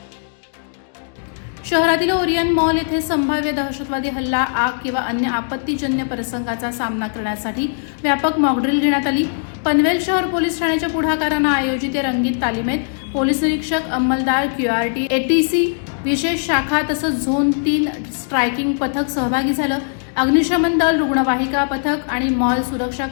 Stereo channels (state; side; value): silent; right; digital silence